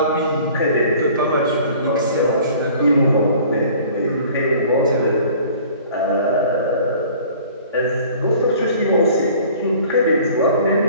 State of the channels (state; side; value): inverted; both; correlation -0.49